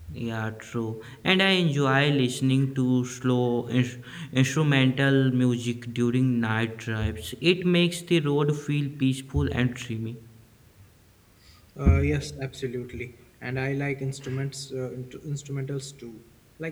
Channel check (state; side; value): identical; both; correlation 1.00